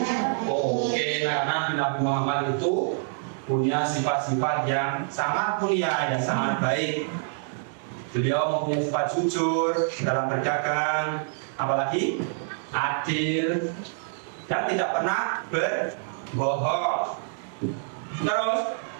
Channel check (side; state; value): left; silent; 61 dB below the other